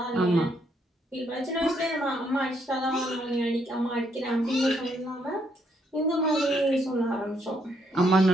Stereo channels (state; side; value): normal; both; correlation 0.73